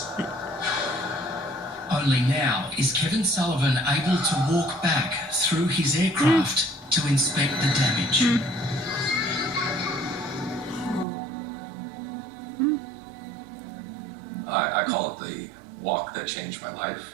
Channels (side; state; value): left; drops out; at 11.1 s